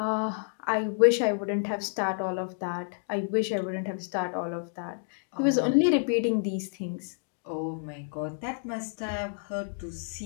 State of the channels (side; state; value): right; silent; digital silence